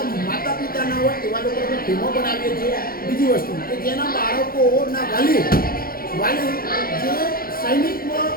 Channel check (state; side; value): late; right; 0.43 ms